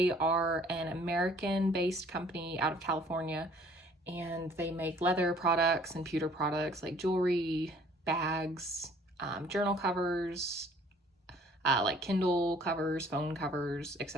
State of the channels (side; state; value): both; normal; correlation 0.56